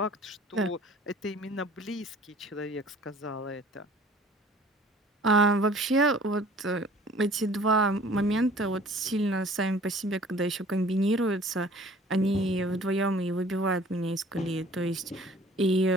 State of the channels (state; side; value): normal; both; correlation 0.51